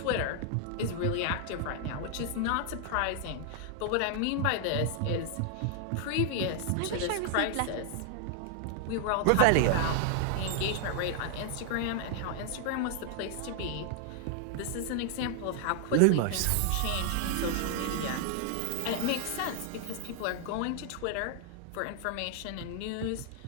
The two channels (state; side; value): different; both; correlation 0.00